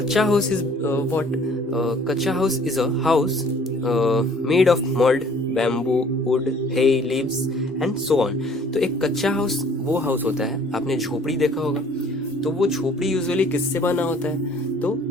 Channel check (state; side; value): normal; both; correlation 0.55